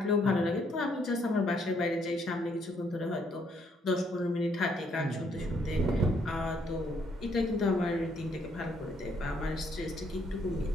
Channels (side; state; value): both; normal; correlation 0.70